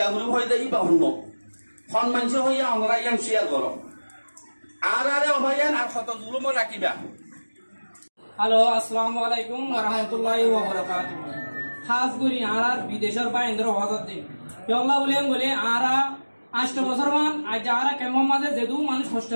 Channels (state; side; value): inverted; both; correlation -1.00